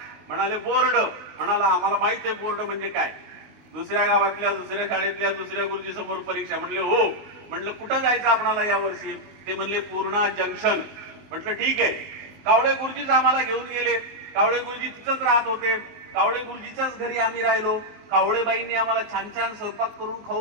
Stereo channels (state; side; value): late; left; 20 ms